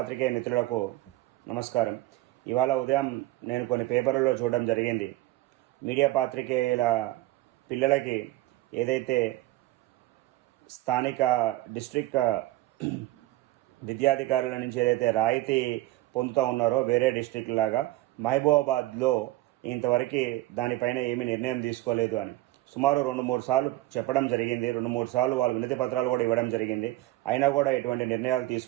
మిత్రులకు నమస్కారం. ఇవాళ ఉదయం నేను కొన్ని పేపర్లలో చూడడం జరిగింది. మీడియా పాత్రికేయుల పిల్లలకి ఏదైతే స్థానిక డిస్ట్రిక్ట్ విద్యాధికారుల నుంచి ఏదైతే రాయితీ పొందుతూ ఉన్నారో వేరే డిస్ట్రిక్ట్ లాగా మహబూబాబాద్లో ఇంతవరకు దానిపైన ఏమీ నిర్ణయం తీసుకోలేదు అని సుమారు 2-3 సార్లు చెప్పడం జరిగింది. 2-3 సార్లు వాళ్ళు వినతి పత్రాలు కూడా ఇవ్వడం జరిగింది. అయినా కూడా ఎటువంటి నిర్ణయాలు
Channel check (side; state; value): left; quieter; 17.4 dB